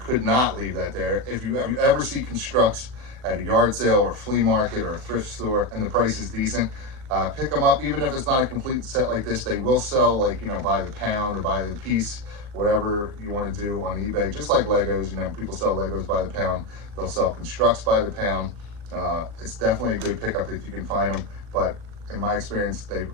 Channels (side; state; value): left; late; 39 ms